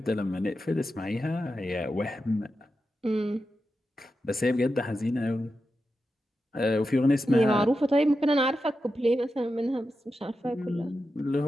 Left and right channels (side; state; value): both; normal; correlation 0.89